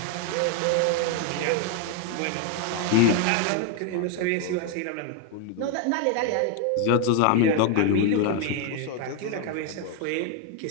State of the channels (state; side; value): different; both; correlation 0.01